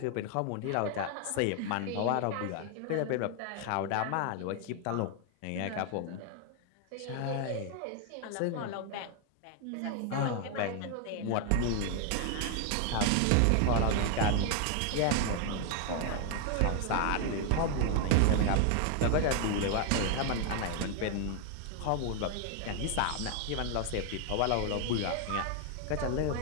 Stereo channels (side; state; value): both; different; correlation 0.00